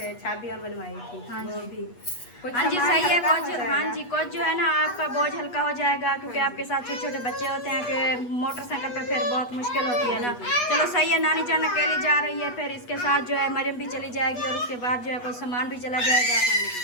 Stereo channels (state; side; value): late; right; 8.3 ms